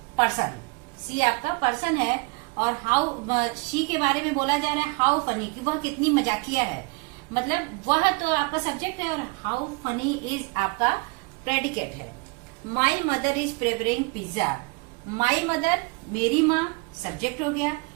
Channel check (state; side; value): quieter; left; 29.2 dB